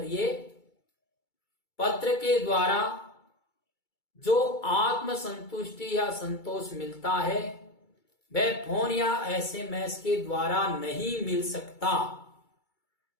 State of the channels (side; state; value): right; late; 2.3 ms